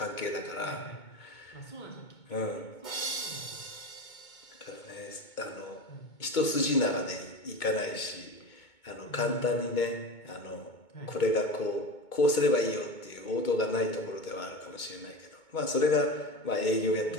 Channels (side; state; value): right; late; 2.2 ms